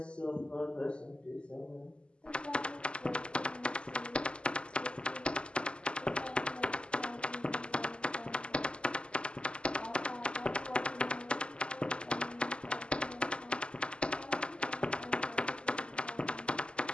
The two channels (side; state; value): right; late; 0.052 ms